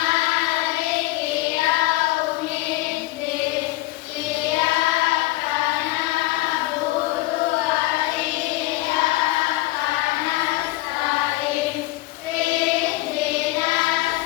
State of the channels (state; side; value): quieter; right; 18.6 dB